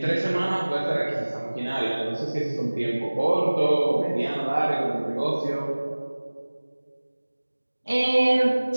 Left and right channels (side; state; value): both; inverted; correlation -1.00